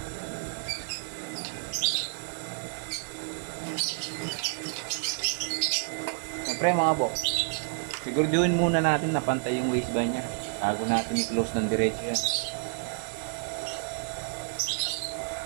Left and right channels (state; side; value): silent; left; digital silence